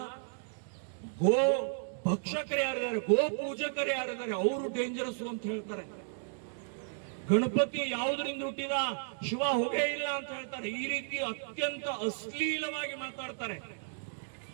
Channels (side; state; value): left; silent; digital silence